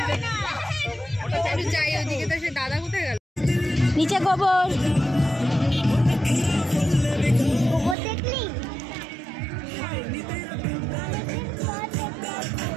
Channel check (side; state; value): left; drops out; at 8.0 s